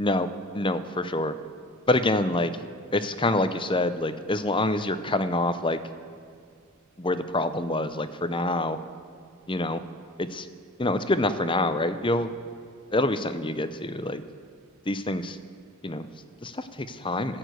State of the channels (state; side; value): normal; both; correlation 0.43